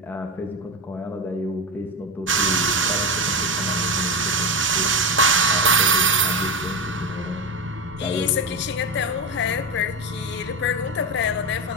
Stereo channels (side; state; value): both; normal; correlation 0.16